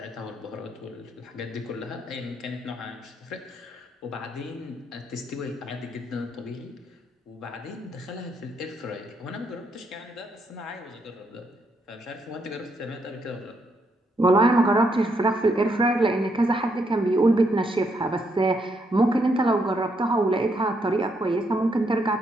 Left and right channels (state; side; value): normal; both; correlation 0.76